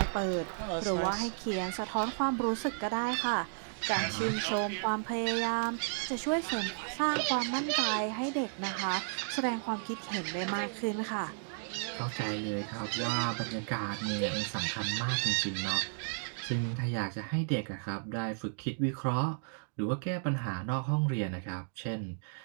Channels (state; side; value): silent; left; digital silence